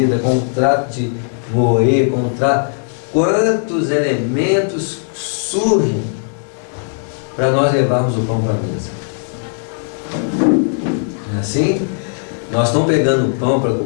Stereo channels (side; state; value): right; silent; 65 dB below the other